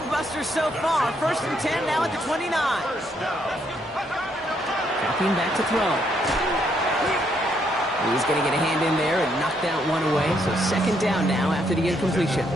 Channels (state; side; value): normal; both; correlation 0.73